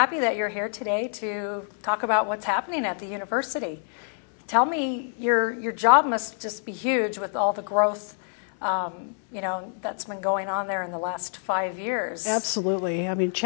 that you're here today to talk about what's happening at the university. Tell me, your job must just be huge with all the growth that's been going on there in the last 5 years. Absolutely. I mean,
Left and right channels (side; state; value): right; silent; digital silence